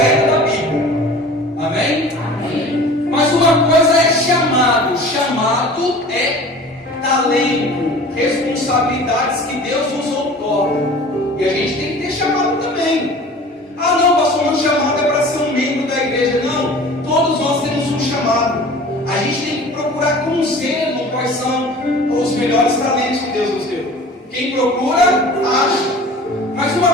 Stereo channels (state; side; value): normal; both; correlation 0.42